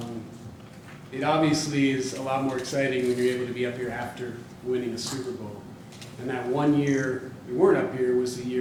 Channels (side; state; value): both; identical; correlation 1.00